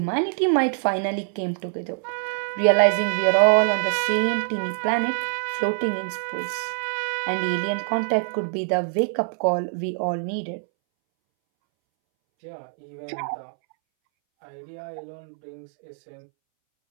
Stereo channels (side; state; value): left; silent; 62 dB below the other